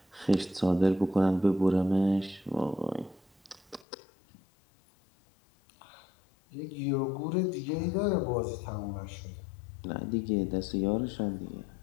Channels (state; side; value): drops out; right; at 3.9 s